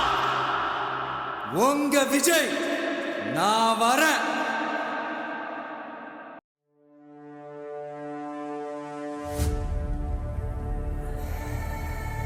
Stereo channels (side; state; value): both; identical; correlation 1.00